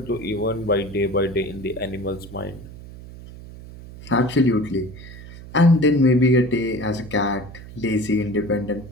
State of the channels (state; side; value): noise; right; hum, 15 dB below the sound